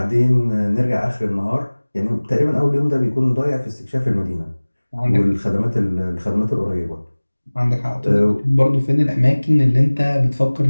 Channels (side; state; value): both; inverted; correlation -1.00